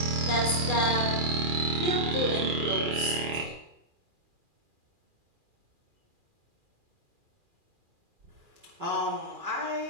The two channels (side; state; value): left; late; 2.4 ms